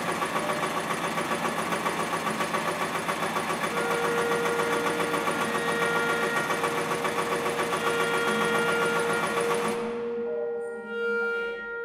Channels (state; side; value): identical; both; correlation 1.00